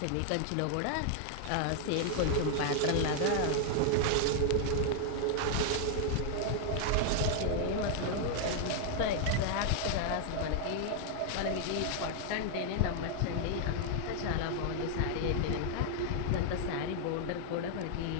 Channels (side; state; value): both; different; correlation 0.00